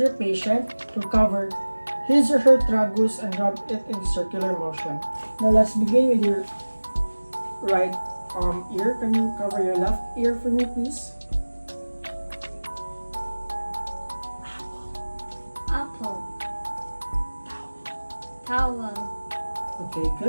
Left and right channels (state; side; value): inverted; both; correlation -1.00